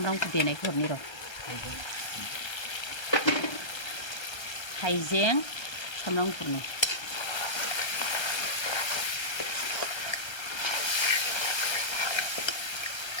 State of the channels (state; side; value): late; right; 1.3 ms